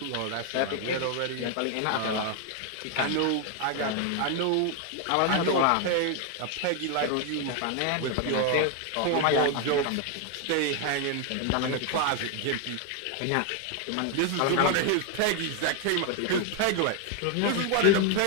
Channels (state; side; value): different; both; correlation 0.01